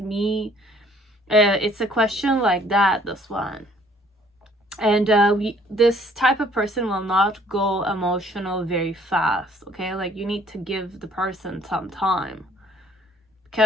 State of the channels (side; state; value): both; normal; correlation 0.59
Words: It's a question like that, this one. And this type of person will not go emotional very fast, okay? Like you need to give the person some time,